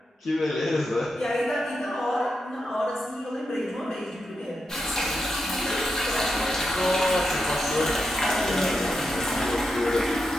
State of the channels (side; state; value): both; normal; correlation 0.86